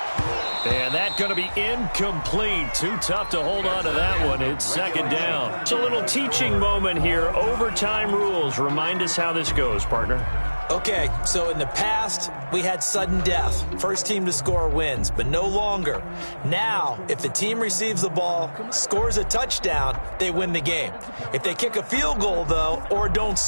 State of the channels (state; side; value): inverted; both; correlation -1.00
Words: And that's going to be incomplete. Too tough to hold on to that one. It's second down. It's a little teaching moment here. Overtime rules. Remind us how this goes, partner. Okay, so in the past, we had sudden death. First team to score wins, but no longer. Now, if the team receives the ball, scores a touchdown, they win the game. If they kick a field goal, though, or don't